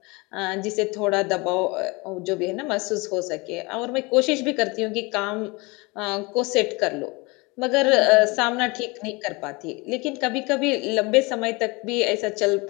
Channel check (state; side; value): quieter; right; 25.8 dB